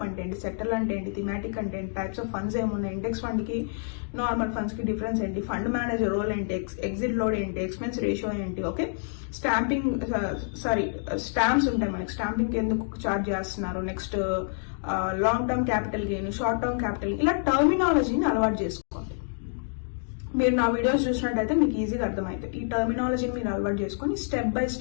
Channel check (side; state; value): right; silent; digital silence